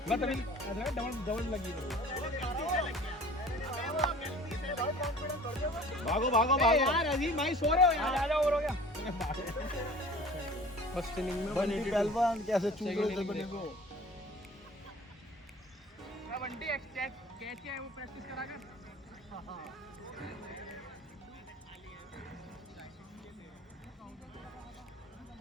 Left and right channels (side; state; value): both; normal; correlation 0.45